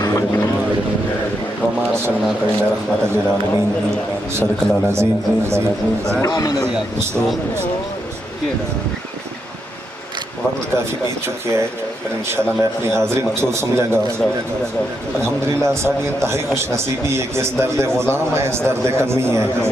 वक्त काफ़ी बीत चुकी है, पर इंशाल्लाह मैं अपनी हाज़िरी मकसूद समझांगा। अल्हम्दुलिल्लाह साडी इंतहाई खुश नसीबी है कि इस दर्द गुलाम है, इस दर्द कमी है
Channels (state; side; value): normal; both; correlation 0.81